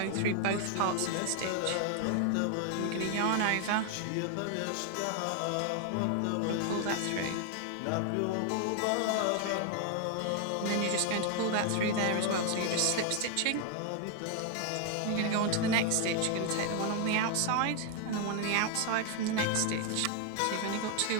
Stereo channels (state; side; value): different; both; correlation 0.00